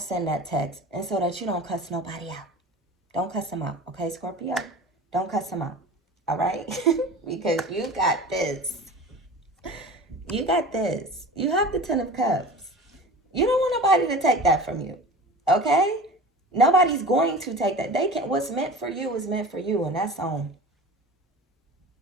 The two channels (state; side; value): normal; both; correlation 0.37